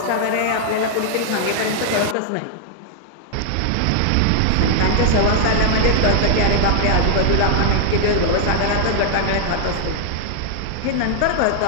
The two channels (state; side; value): different; both; correlation 0.00